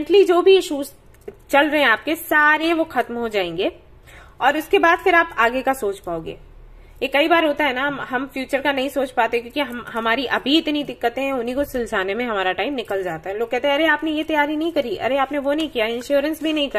जो भी इश्यूज चल रहे हैं आपके, सारे वो खत्म हो जाएंगे, और उसके बाद फिर आप आगे का सोच पाओगे। ये कई बार होता है ना, हम फ्यूचर का नहीं सोच पाते क्योंकि हमारी अभी इतनी दिक्कतें हैं, उन्हीं को सुलझाने में हमारा टाइम निकल जाता है। लोग कहते हैं अरे आपने ये तैयारी नहीं करी, अरे आपने वो नहीं किया, इंश्योरेंस भी नहीं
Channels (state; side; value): identical; both; correlation 1.00